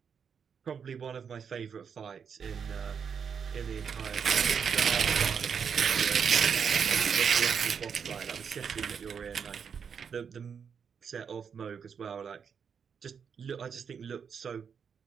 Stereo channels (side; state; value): left; quieter; 6.8 dB